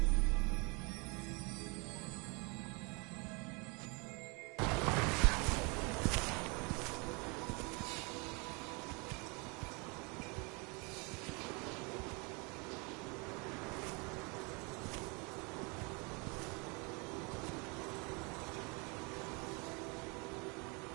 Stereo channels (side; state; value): left; quieter; 30.3 dB